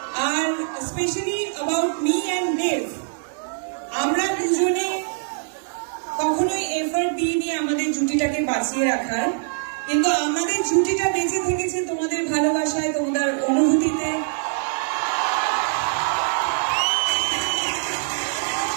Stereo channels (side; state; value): left; silent; digital silence